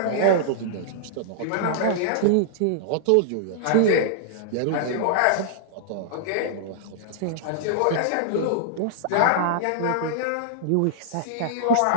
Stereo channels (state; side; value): different; both; correlation -0.01